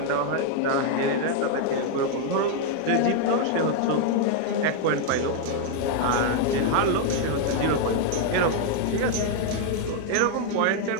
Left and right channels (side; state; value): both; different; correlation 0.00